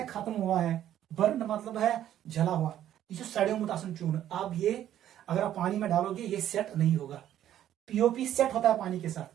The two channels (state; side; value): quieter; left; 11.6 dB